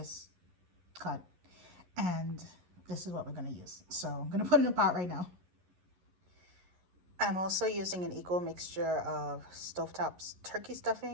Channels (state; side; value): late; left; 11 ms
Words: cut. And this is what we're gonna use. So I'm gonna put it in a pot right now. I'm also using an equal mixture of stovetop turkey